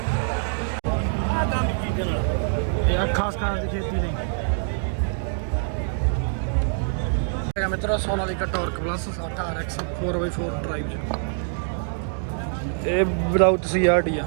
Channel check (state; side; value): silent; left; digital silence